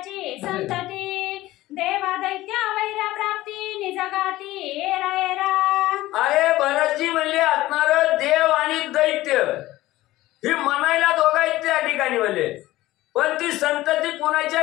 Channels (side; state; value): right; quieter; 16.8 dB